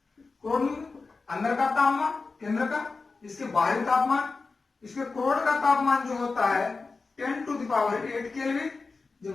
क्रोड अंदर का तापमान केंद्र का, इसके बाहरी तापमान, इसके क्रोड का तापमान जो होता है 10⁸ केल्विन,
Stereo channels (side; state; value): right; quieter; 4.1 dB